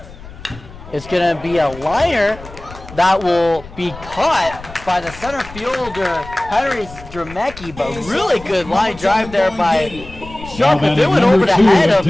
It's going to be a liner that will be caught by the center fielder, Henry Stremecki, but really good line drive there by Sharp. If it went over the head of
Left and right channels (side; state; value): left; noise; rumble, 17 dB below the sound